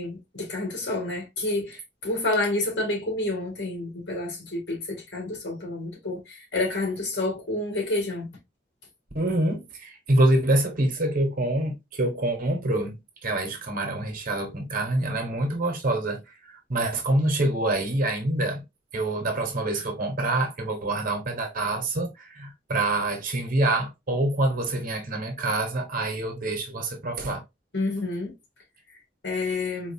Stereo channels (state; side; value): normal; both; correlation 0.45